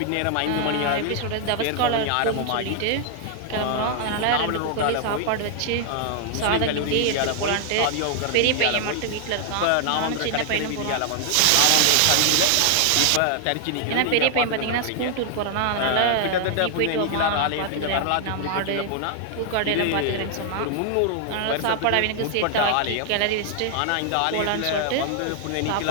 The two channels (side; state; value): both; different; correlation 0.00